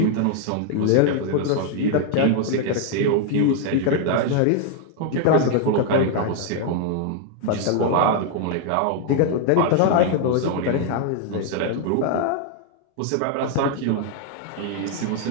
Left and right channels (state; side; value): different; both; correlation 0.00